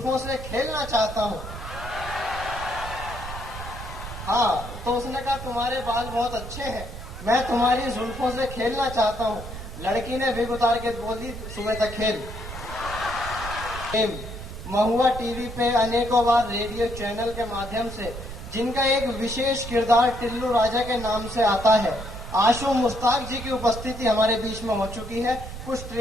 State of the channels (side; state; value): right; noise; rumble, 10 dB below the sound